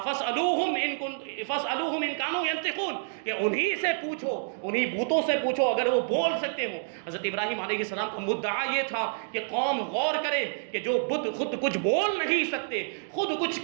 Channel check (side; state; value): left; silent; digital silence